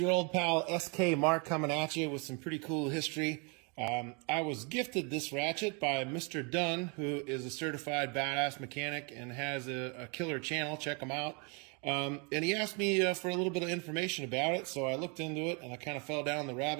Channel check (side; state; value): left; quieter; 33.8 dB